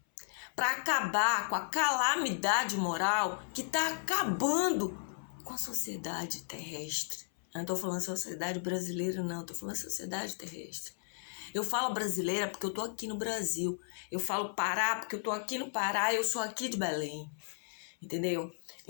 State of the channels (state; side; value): silent; right; 55 dB below the other